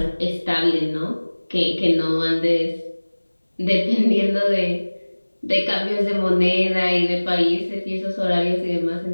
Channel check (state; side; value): inverted; both; correlation -1.00